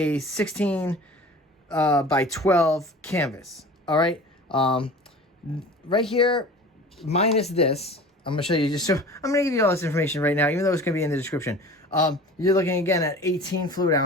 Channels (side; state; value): both; normal; correlation 0.40